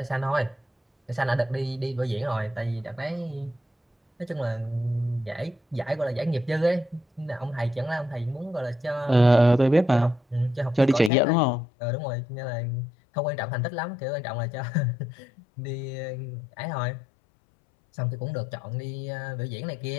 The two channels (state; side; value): drops out; right; at 11.1 s